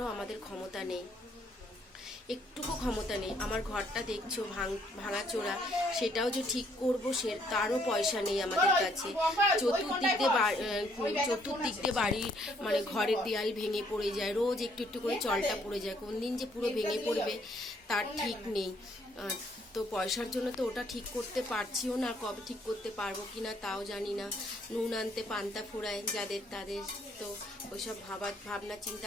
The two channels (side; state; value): both; normal; correlation 0.67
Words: আমাদের ক্ষমতা নেই, একটুকু ক্ষমতা নেই। আমার ঘরটা দেখছো ভাঙাচোরা, সেটাও যে ঠিক করবো তারও পয়সা নেই আমাদের কাছে। চতুর্দিক দিয়ে বাড়ির মানে ঘরের দেয়াল ভেঙে পড়ে যায়, রোজ একটু একটু করে চলটা পড়ে যায়। কোন দিন যে পুরো ভেঙে পড়বে তার ঠিক নেই। তো পয়সার জন্য তো ওটা ঠিক করতে পারছিও না, কবে ঠিক করতে পারবো কি না তাও জানি না। নুন আনতে পান্তা ফুরায় যাদের তাদের, তো ওইসব ভাবনা